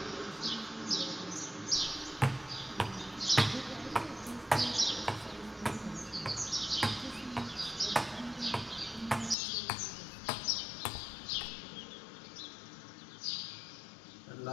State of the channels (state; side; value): drops out; right; at 9.3 s